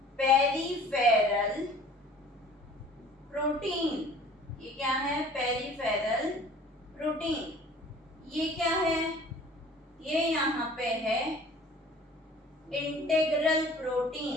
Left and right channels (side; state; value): both; normal; correlation 0.49